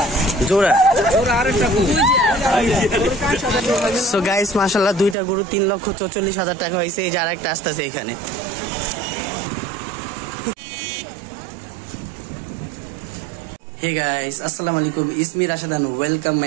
জোড়া so guys মাশাআল্লাহ দুইটা গরু 3,44,000 টাকা হয়েছে। এই যে আরেকটা আসতেছে এখানে। হে গাইস আসসালামু আলাইকুম, ইসমি Rashedan, welcome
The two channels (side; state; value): left; drops out; at 5.2 s